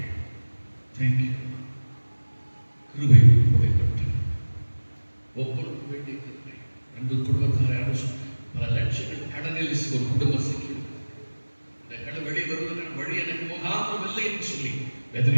தேங்க்யூ. கிருபை உங்களை பெற்று ஒவ்வொருவரும் வேண்டிய கிருபை. அன்பு குடும்பத்தாரை பல லட்சங்கள் கடனில் ஒரு குடும்ப சிக்கி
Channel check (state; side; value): inverted; both; correlation -1.00